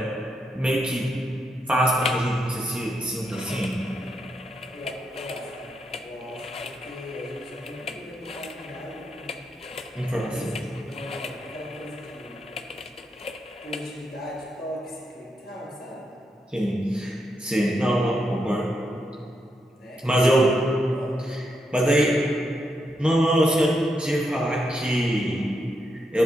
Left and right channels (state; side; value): normal; both; correlation 0.81